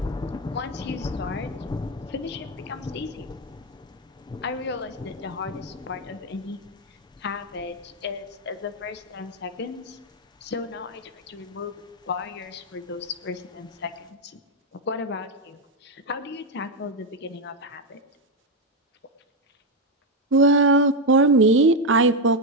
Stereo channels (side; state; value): both; normal; correlation 0.06